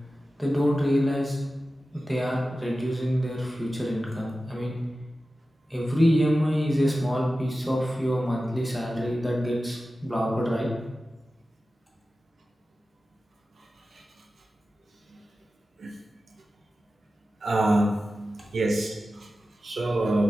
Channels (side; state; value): both; normal; correlation 0.94